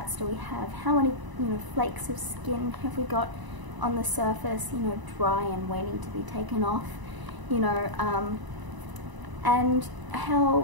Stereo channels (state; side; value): late; left; 1.0 ms